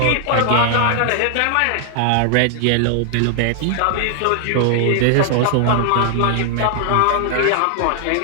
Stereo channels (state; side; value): different; both; correlation -0.01